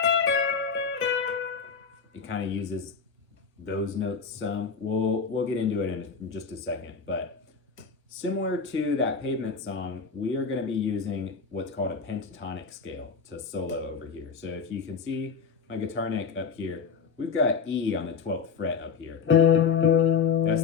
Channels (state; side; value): quieter; right; 5.8 dB